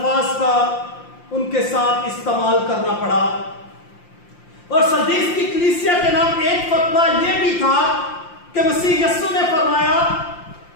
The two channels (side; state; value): right; late; 5.7 ms